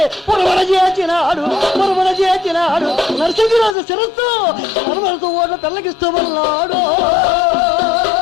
పురమణ చేసినాడు. నరసింహరాజు శిరస్సు నర్మలతో ఓట్ల తెల్లగిస్తూ ఉన్నాడు.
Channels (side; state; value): right; drops out; at 3.8 s